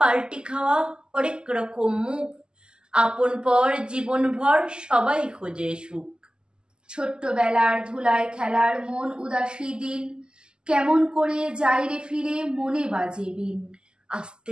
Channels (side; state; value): left; late; 0.047 ms